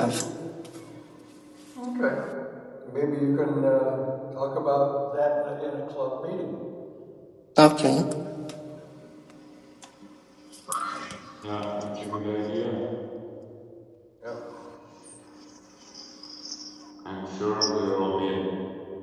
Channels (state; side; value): identical; both; correlation 1.00